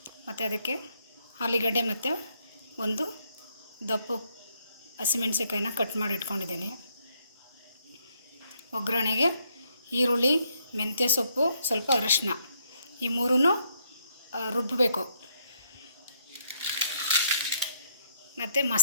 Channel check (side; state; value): both; inverted; correlation -0.72